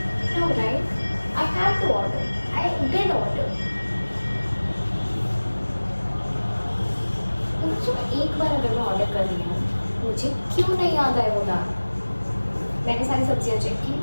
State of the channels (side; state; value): both; inverted; correlation -1.00